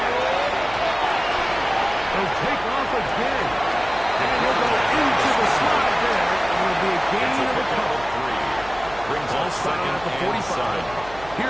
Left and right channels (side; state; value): right; noise; hum, 18 dB below the sound